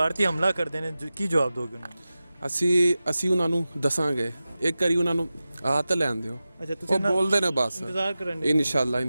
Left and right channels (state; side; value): inverted; both; correlation -0.95